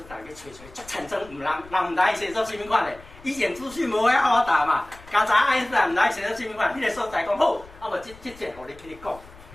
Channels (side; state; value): left; noise; rumble, 21 dB below the sound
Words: 坦去找，足产生人毋知写作什么款的，以前资讯无遐好答嘛，刚才爱因斯坦毋知写作什么款，迄个所在讲好，啊无即节互你去你讲。